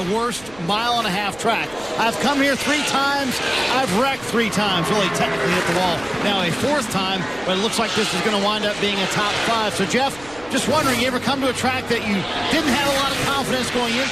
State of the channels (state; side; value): noise; right; rumble, 22 dB below the sound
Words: worst mile-and-a-half track. I've come here 3 times. I've wrecked 3 times, really technically hit the wall. Now a 4th time, but it looks like this is going to wind up being a top 5. So, Jeff, just wondering, you ever come to a track that you didn't have a lot of confidence going